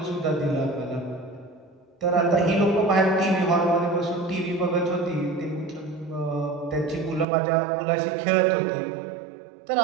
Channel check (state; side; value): drops out; left; at 7.2 s